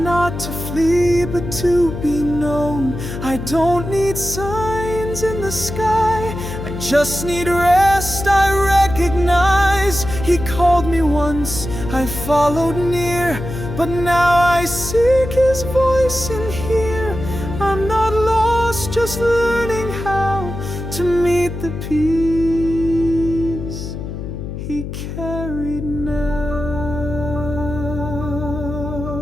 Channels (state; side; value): noise; left; hum, 7 dB below the sound